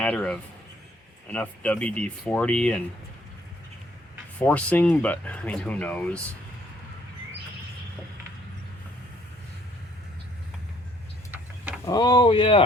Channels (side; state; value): both; normal; correlation 0.64